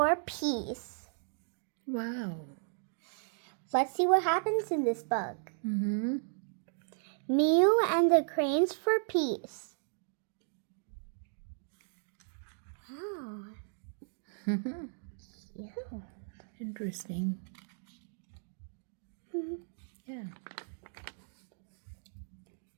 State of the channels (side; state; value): left; silent; digital silence